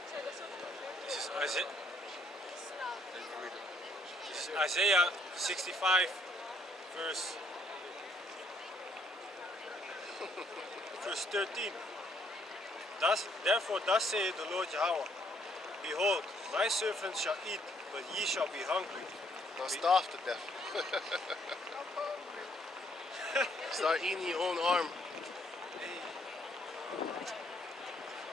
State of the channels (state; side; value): normal; both; correlation 0.68